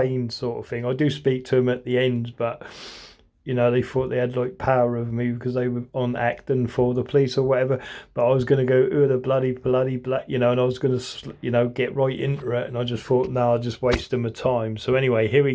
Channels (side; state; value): both; identical; correlation 1.00